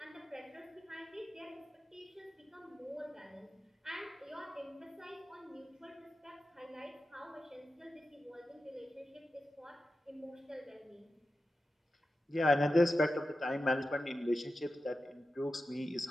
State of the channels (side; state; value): both; normal; correlation 0.92